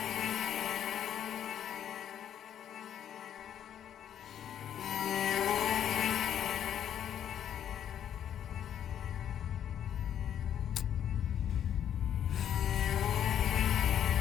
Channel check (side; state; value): right; quieter; 9.8 dB